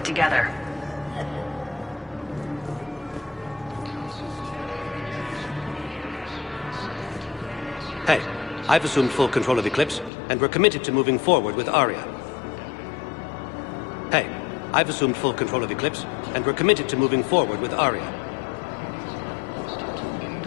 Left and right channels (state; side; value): drops out; right; at 10.1 s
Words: together. Hey, I've assumed full control of Eclipse, and we're committed to moving forward with Aria. Hey, I've assumed full control of Eclipse, and we're committed to moving forward with Aria.